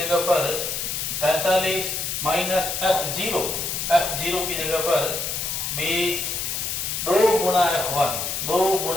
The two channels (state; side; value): noise; left; hiss, 2 dB below the sound